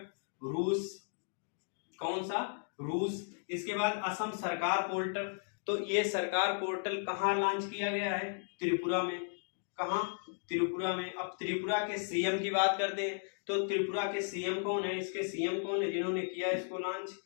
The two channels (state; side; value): silent; right; digital silence